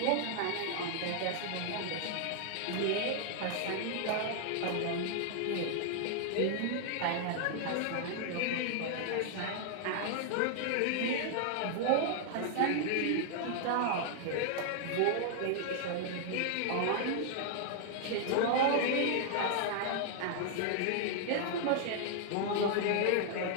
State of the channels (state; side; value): different; both; correlation 0.00